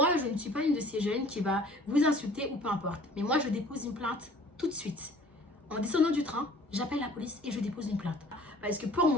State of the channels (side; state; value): both; normal; correlation 0.51